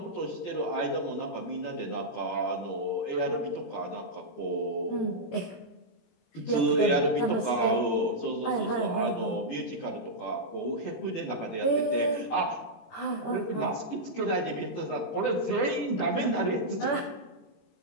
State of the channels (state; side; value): late; right; 18 ms